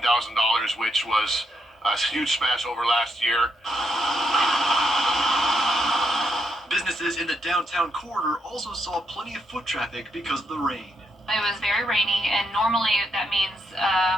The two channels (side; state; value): both; normal; correlation 0.77